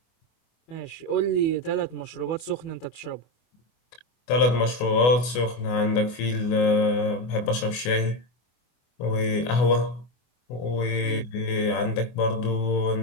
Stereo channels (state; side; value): late; right; 24 ms